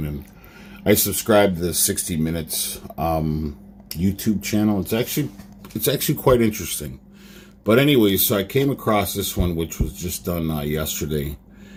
and I subscribed to the 60 Minutes YouTube channel. It's actually quite interesting. But anyways, so I came across this one, which was just done yesterday.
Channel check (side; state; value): both; identical; correlation 1.00